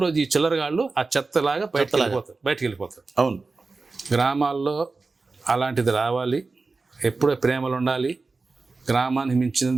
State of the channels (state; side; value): quieter; left; 3.9 dB